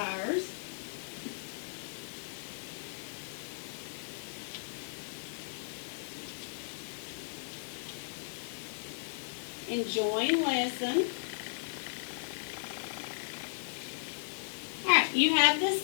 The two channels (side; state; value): right; silent; 54 dB below the other